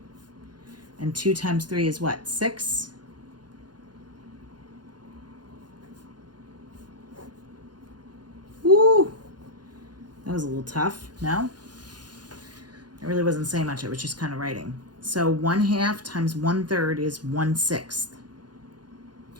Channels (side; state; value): left; late; 0.70 ms